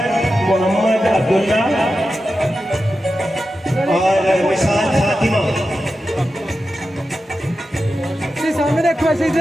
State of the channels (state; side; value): normal; both; correlation 0.91